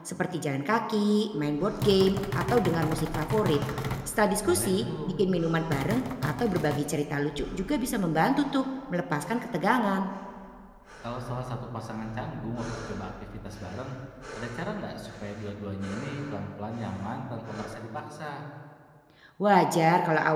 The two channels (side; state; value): both; identical; correlation 1.00